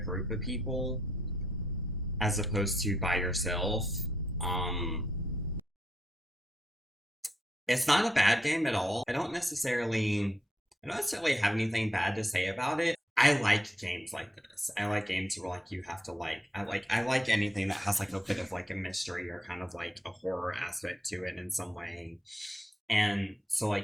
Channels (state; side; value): normal; both; correlation 0.78